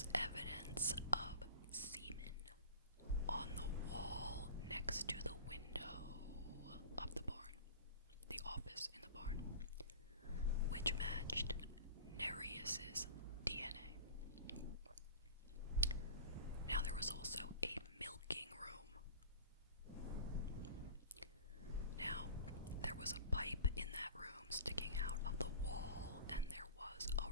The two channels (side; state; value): both; inverted; correlation -0.38